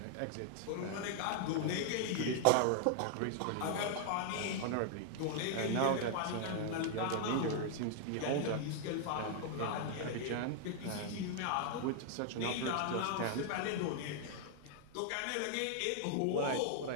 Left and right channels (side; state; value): both; different; correlation 0.00